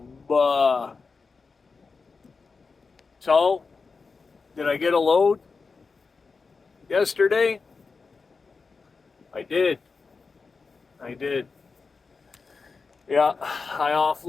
So, did I get a load yesterday? I did. I did. Yeah, I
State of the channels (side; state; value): right; quieter; 4.6 dB